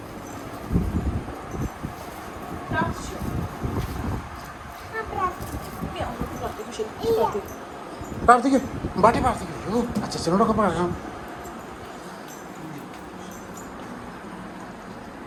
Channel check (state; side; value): identical; both; correlation 1.00